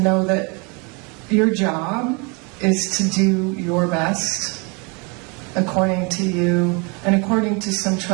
know that your job is to do your best according to you and according to some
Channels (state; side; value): quieter; left; 30.7 dB